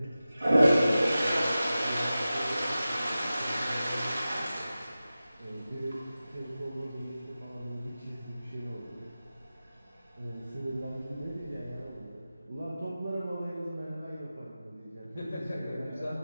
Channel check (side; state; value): both; inverted; correlation -0.95